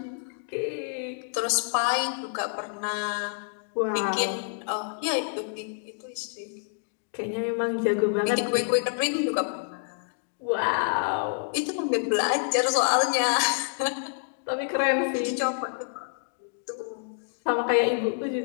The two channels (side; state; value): right; silent; digital silence